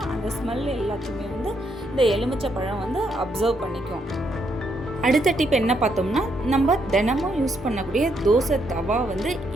அந்த ஸ்மெல் எல்லாத்தையுமே இந்த எலுமிச்சை பழம் அப்சர்வ் பண்ணிக்கும். அடுத்த டிப் என்ன பார்த்தோம்னா, நம்ம தினமும் யூஸ் பண்ணக்கூடிய தோசை தவா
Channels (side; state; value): both; normal; correlation 0.76